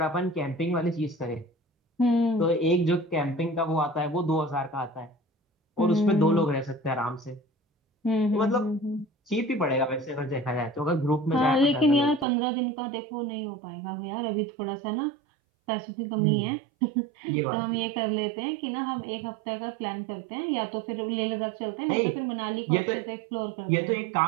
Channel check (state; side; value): drops out; left; at 12.2 s